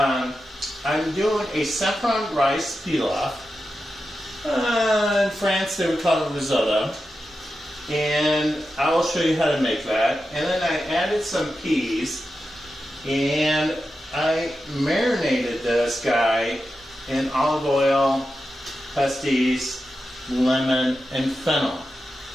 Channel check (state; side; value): normal; both; correlation 0.90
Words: I'm doing a saffron rice pilaf. In France they would call it risotto. And I will show you how to make that. And then I added some peas, and I marinated this guy in olive oil, pastis, lemon, and fennel.